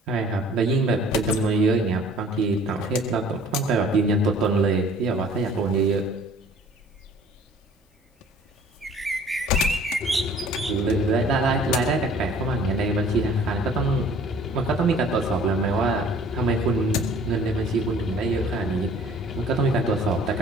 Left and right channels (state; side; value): normal; both; correlation 0.52